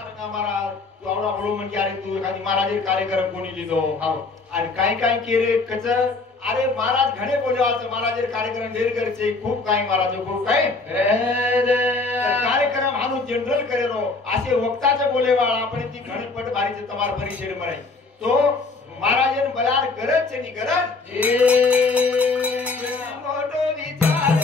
का महाराज तू आवडा बोलो म्हणजे अरे तू एखादी महाराज कार्यक्रम कोणी लिहितो आणि काय केले कच अरे महाराज घणे बोलवाचं महाराज कार्यक्रम ढेर करचे खूप काही महाराज खूप काही कार्यक्रम हानू जनरल करेलो असे वक्ताचे बोलेवाळ आपण ती घणपट बारीचे तमार परिषद म्हणाय तो महाराजन बलार गरज छे नी गरज मोठो विचार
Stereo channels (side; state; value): right; quieter; 3.8 dB